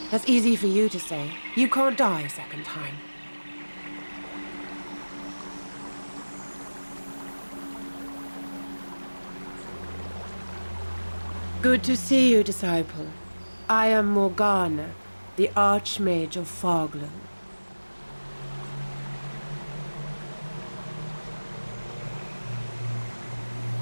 That's easy for you to say. You can't die a second time. Good to see you, disciple. I am Morgana, the Archmage of Foglow.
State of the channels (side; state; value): both; inverted; correlation -1.00